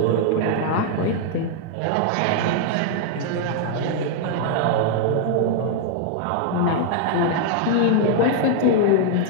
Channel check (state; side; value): different; both; correlation 0.00